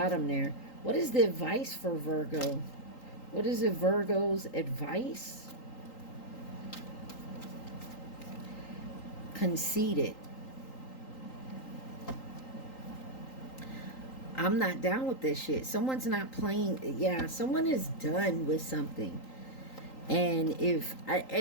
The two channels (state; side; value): late; right; 3.8 ms